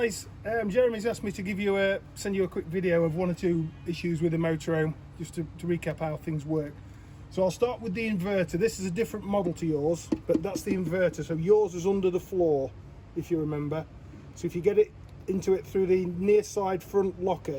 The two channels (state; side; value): identical; both; correlation 1.00